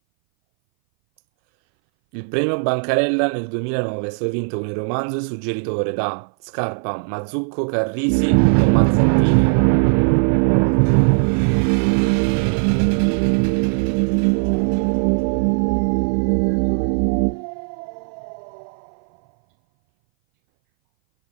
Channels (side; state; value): left; silent; 60 dB below the other